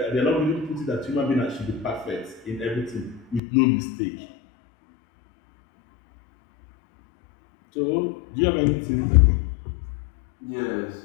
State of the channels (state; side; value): drops out; right; at 3.4 s